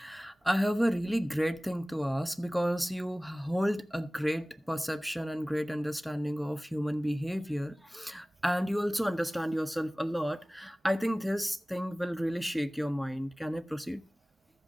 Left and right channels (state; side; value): normal; both; correlation 0.98